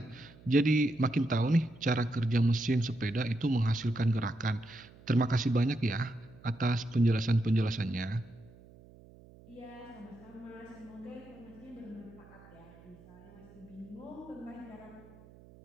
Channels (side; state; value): right; noise; hum, 23 dB below the sound